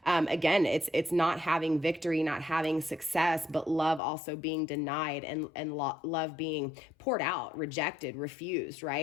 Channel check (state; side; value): drops out; right; at 4.0 s